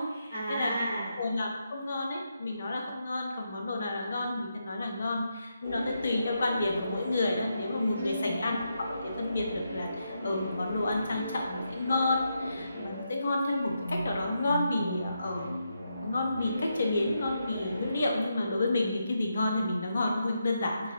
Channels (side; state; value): both; inverted; correlation -0.83